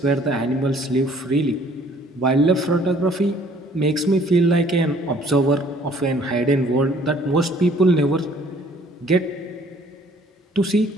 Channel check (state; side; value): normal; both; correlation 0.58